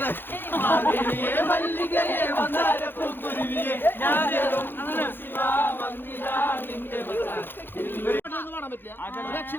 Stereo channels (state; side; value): late; right; 0.10 ms